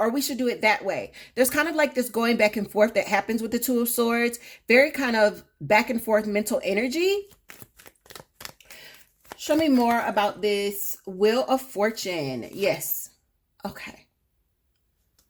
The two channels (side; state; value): both; identical; correlation 1.00